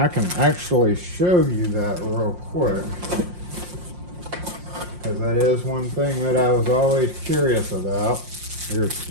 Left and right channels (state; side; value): late; left; 5.6 ms